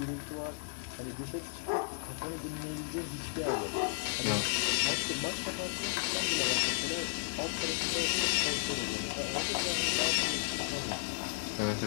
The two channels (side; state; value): right; silent; digital silence